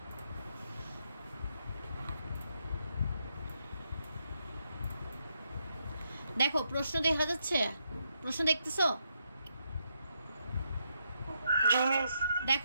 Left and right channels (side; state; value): both; inverted; correlation -0.79